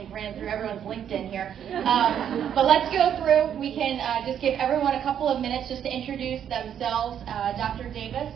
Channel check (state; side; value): quieter; left; 9.2 dB